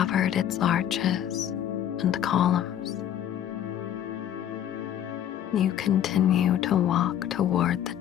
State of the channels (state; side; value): quieter; right; 10.5 dB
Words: its arches and columns. You continue to walk toward the